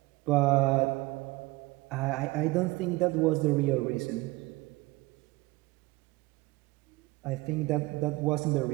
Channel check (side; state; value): left; quieter; 21.2 dB